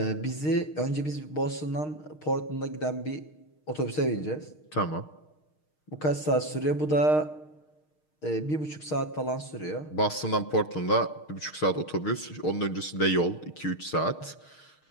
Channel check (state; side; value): late; right; 6.5 ms